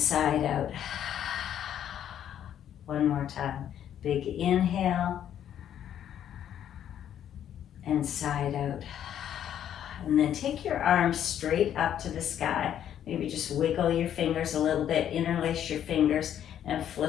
it out. One more time. Big inhale, and sigh it out. And then take your arms straight up to the sky. Maybe just wiggle your fingers a little bit, interlace your fingers, and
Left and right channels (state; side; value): quieter; right; 10.2 dB